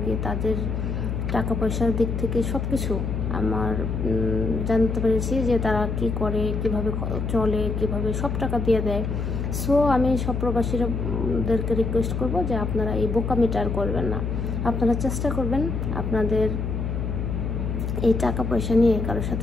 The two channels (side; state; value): left; noise; hum, 2 dB below the sound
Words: কি তাদের টাকা পয়সার দিক থেকে সব কিছু আমার জানতে পেরেছি যে তারা কি করে, কিভাবে চলে, কিভাবে সব টাকা দিয়ে দেয়। সো আমি সব প্রবাসীদেরকে রিকোয়েস্ট করব যে আপনারা এই বোকামিটা আর করবেন না। আপনারা চেষ্টা করবেন আপনাদের এই টাকা পয়সা নিয়ে কারোর